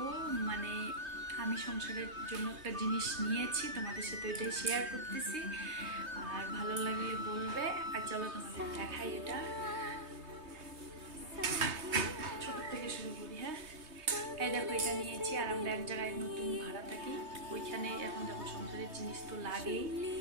মানে আমি সংসারের জন্য একটা জিনিস নিয়েছি, তোমাদের সাথে ওইটাই শেয়ার করতেছি। আর ভালো লাগলে বলবে। আর চলো তোমাদের দেখাই। এটা ছোট থেকে শুরু করি। হ্যাঁ, এই দেখো, এটা নিয়েছি। আর আমরা এক জায়গায় নতুন ভাড়া থাকি, ওইখানে এখন দেখো সংসারের জিনিস তো লাগেই।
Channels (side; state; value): left; late; 3.2 ms